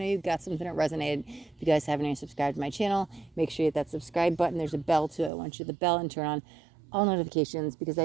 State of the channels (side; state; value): left; drops out; at 5.3 s